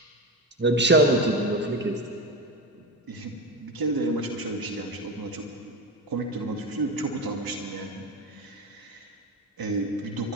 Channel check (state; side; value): normal; both; correlation 0.21